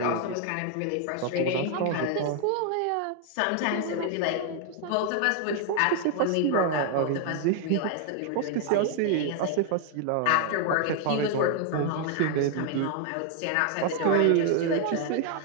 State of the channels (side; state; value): both; different; correlation 0.00